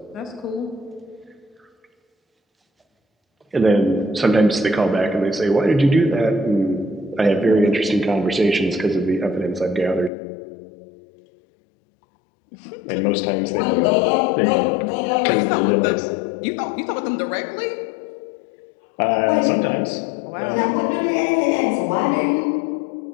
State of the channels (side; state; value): right; drops out; at 10.1 s